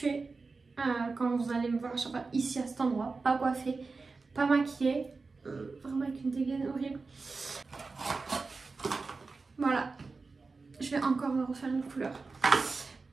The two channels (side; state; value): left; quieter; 4.1 dB